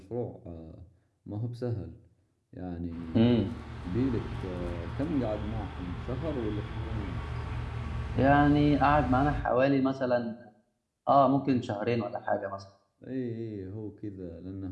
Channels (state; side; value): identical; both; correlation 1.00